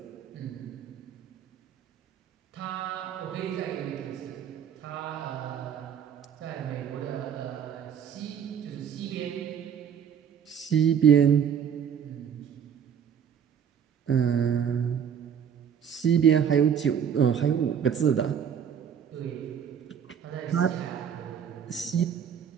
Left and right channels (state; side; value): quieter; left; 8.1 dB